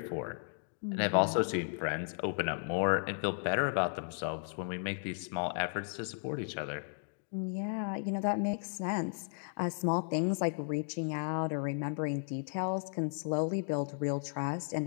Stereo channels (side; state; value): right; silent; digital silence